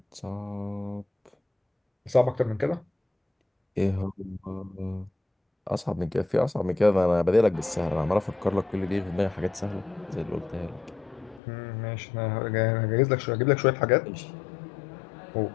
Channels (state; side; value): drops out; right; at 11.4 s